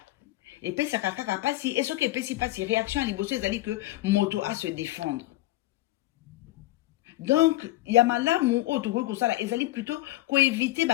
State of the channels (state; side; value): quieter; right; 17.6 dB